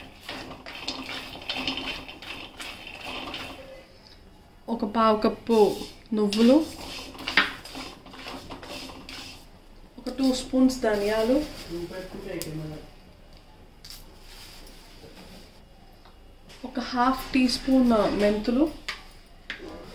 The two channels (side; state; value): both; identical; correlation 1.00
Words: ఒక పావు కప్పు నువ్వులు, ఒక 2 స్పూన్స్ ధనియాలు, ఒక ½ టీ స్పూన్ మెంతులు,